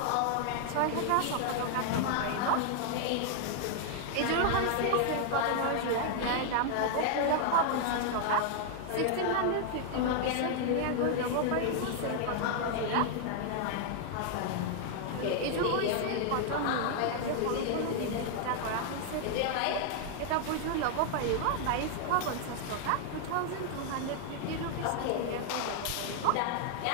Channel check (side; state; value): both; different; correlation 0.00